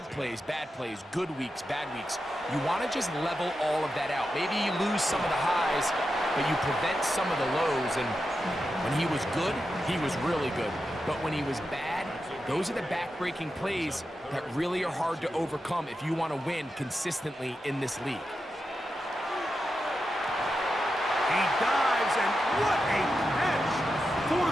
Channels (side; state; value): both; normal; correlation 0.89